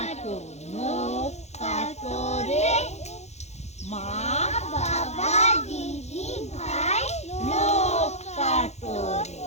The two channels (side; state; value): right; late; 0.32 ms